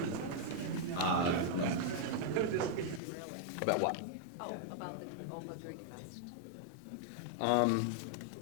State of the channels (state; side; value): drops out; right; at 3.0 s